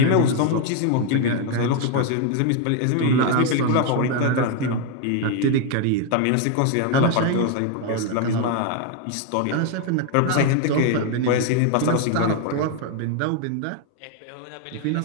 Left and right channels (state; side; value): different; both; correlation 0.01